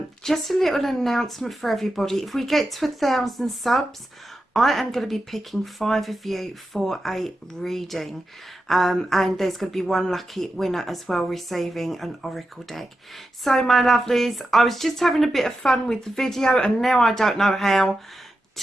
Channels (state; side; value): normal; both; correlation 0.89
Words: Just a little announcement for everybody. If we get to 1,000 subs, I am going to be picking 5 of you for a reading, and there's going to be one lucky winner as well receiving an oracle deck. So my lovelies, I was just having a bit of fun with the video and now I don't know how